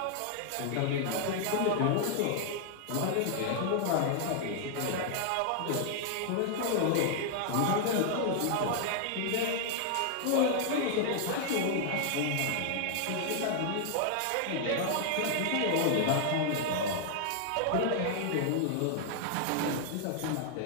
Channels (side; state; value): both; different; correlation 0.00